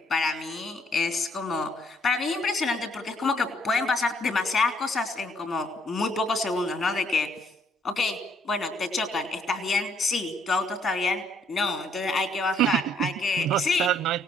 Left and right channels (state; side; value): normal; both; correlation 0.67